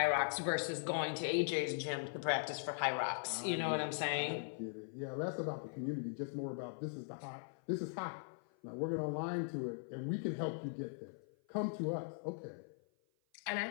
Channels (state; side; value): silent; right; 51 dB below the other